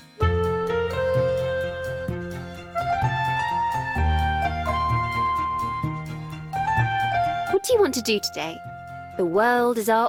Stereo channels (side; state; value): both; identical; correlation 1.00